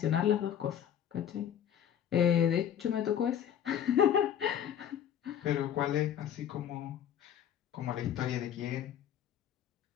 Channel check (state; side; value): quieter; right; 9.6 dB